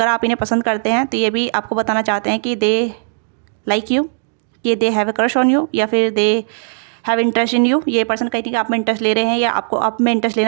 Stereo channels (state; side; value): silent; left; digital silence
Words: आप इन्हें पसंद करते हैं तो ये भी आपको बताना चाहते हैं कि दे लाइक यू, कि they have a crush on you, या फिर they have interest in you. ये पर्सन कहीं कि आप में इंटरेस्ट ले रहे हैं या आपको आप में इंटरेस्ट